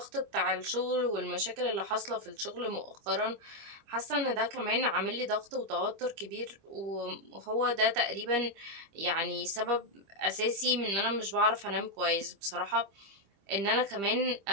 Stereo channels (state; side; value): late; left; 25 ms